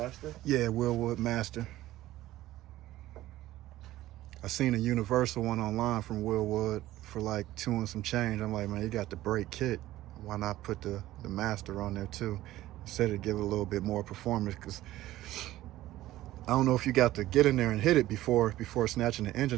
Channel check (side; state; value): left; quieter; 15.4 dB